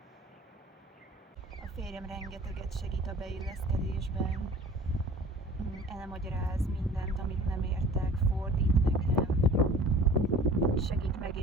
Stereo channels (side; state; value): both; normal; correlation 0.46